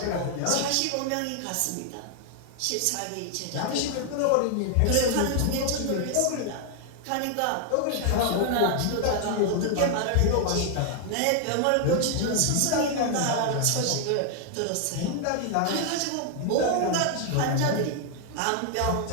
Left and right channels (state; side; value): different; both; correlation 0.00